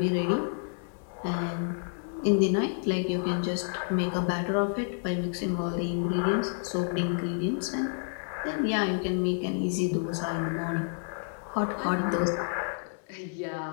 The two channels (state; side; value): silent; right; 58 dB below the other